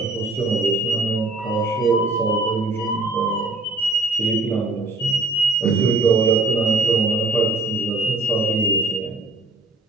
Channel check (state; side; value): quieter; left; 3.1 dB